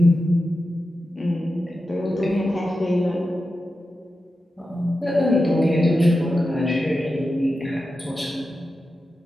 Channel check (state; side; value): normal; both; correlation 0.91